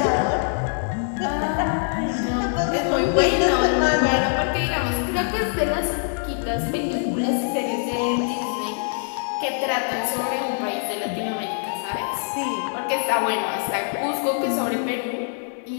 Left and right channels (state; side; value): silent; right; 56 dB below the other